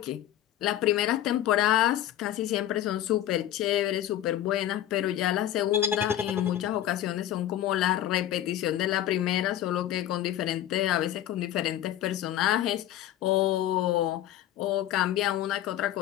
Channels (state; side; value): quieter; right; 12.3 dB